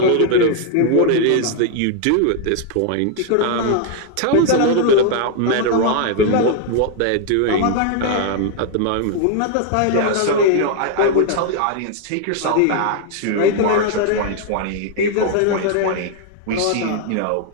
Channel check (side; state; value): both; different; correlation 0.00